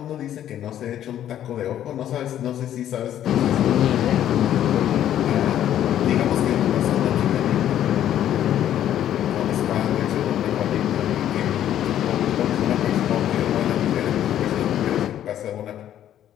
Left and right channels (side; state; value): right; quieter; 11.2 dB